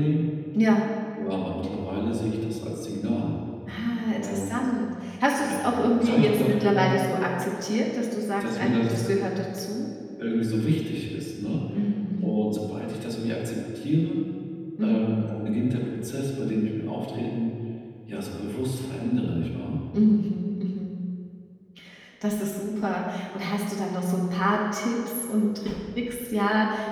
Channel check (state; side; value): identical; both; correlation 1.00